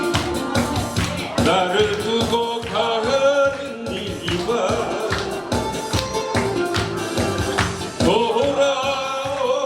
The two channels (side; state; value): both; identical; correlation 1.00